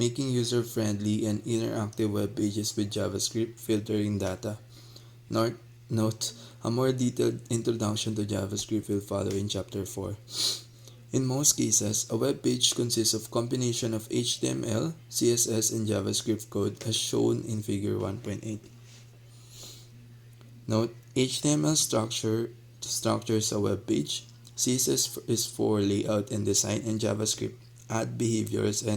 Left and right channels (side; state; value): both; identical; correlation 1.00